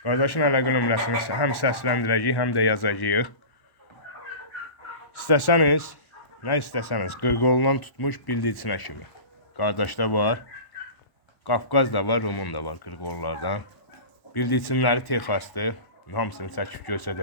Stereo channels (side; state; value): right; late; 1.1 ms